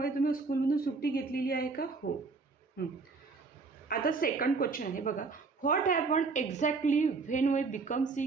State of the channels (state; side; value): quieter; left; 4.3 dB